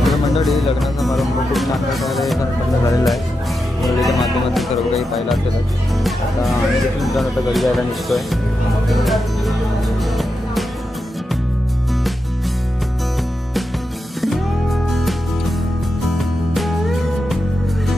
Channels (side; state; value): both; normal; correlation 0.88